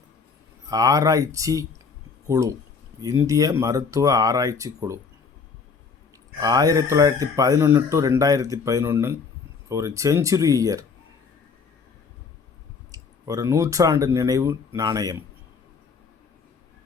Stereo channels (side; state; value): right; quieter; 5.3 dB